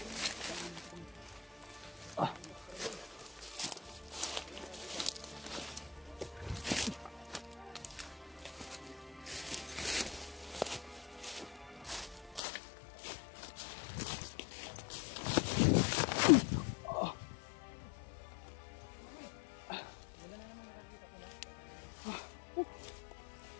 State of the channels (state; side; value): drops out; right; at 12.4 s